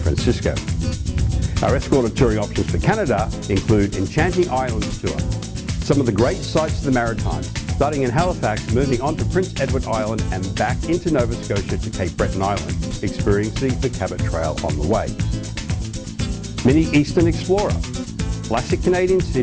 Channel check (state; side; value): identical; both; correlation 1.00